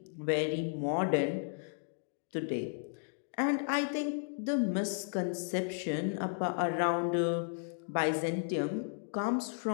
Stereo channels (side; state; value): right; silent; digital silence